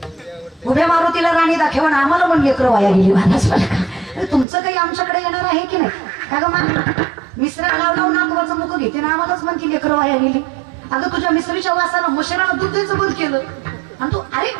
उभ्या मारुतीला राणी दाखव आणि आम्हाला पण लेकरं वाया गेली. मानस तुमचं काही आमच्याकडे येणार आहे की नाही? का ग मा मिश्रा लाव लाव नातवाचं मुख घेते ना आम्हालाच म्हणती लेकरं वाया गेली. अगं तुझ्या मिसरीच्या वासानं मशिरानं दूध द्यायचं बंद केलं आणि तू अरे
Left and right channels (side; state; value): left; drops out; at 4.5 s